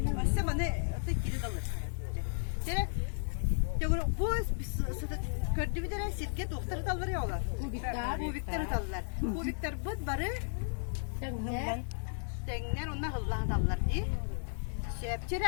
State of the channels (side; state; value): right; silent; 55 dB below the other